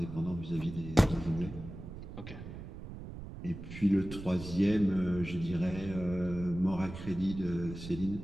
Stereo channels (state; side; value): noise; right; rumble, 11 dB below the sound